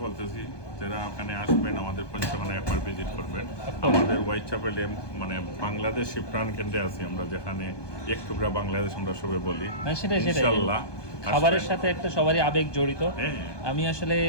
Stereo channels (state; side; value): late; right; 1.2 ms